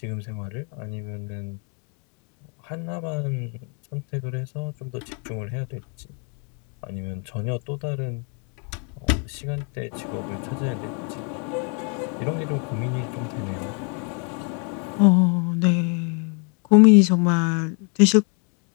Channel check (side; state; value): right; quieter; 38.1 dB